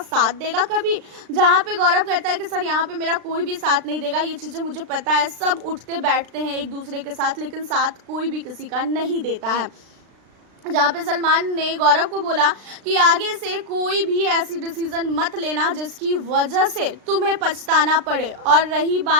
देगा कभी? जहाँ पे गौरव कहता है कि सर यहाँ पे मेरा कोई भी साथ नहीं देगा, ये चीज़ें मुझे पता है, सब उठते बैठते हैं एक दूसरे के साथ, लेकिन साथ कोई भी किसी का नहीं देता है। जहाँ पे सलमान ने गौरव को बोला कि आगे से कोई भी ऐसी डिसीजन मत लेना जिसकी वजह से तुम्हें पछताना पड़े। और रही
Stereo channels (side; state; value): left; late; 36 ms